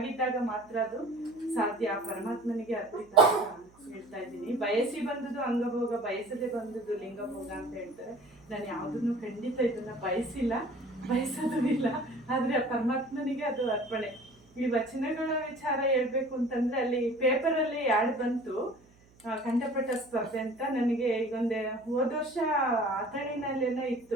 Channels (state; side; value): noise; right; hum, 29 dB below the sound